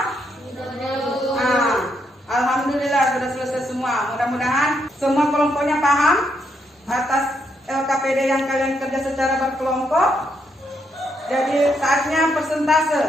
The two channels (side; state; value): both; normal; correlation 0.77